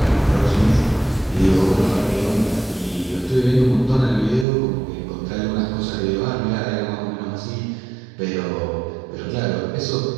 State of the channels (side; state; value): left; drops out; at 4.5 s